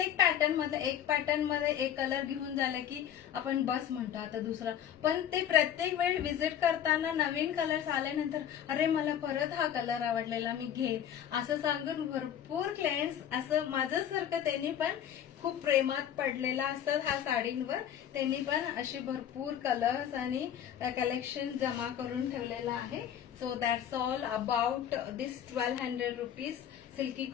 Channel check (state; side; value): quieter; right; 9.9 dB